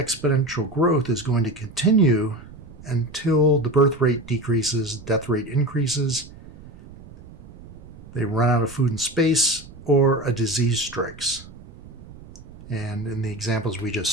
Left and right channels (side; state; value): right; noise; rumble, 19 dB below the sound